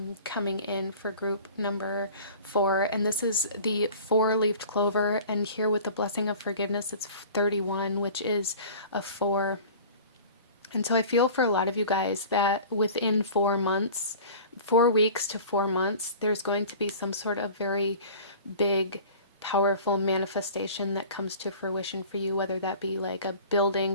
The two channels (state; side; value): inverted; both; correlation -0.42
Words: coming in for group number 4. And this is the 4-leafed clover, and here with the blessing of forgiveness, it's 31, which is a 4. And so I feel for a lot of you guys that within 4 months, 4 weeks to 4 months, there's going to be some sort of very big, powerful manifestation that comes to fruition for you, whether that be like a building